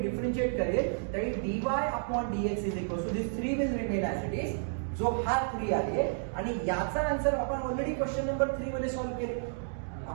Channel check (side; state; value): left; silent; digital silence